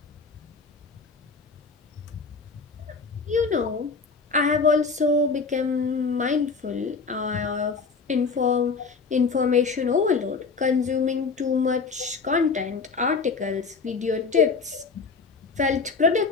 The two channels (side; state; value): right; quieter; 4.7 dB